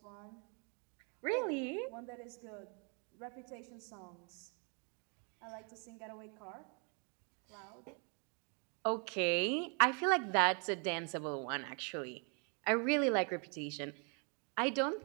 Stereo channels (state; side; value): quieter; left; 37.1 dB